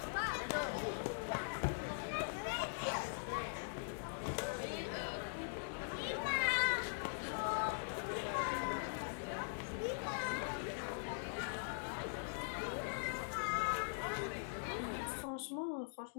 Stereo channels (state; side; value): silent; right; digital silence